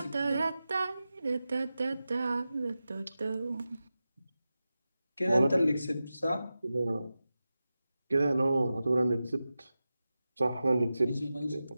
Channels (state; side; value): inverted; both; correlation -0.93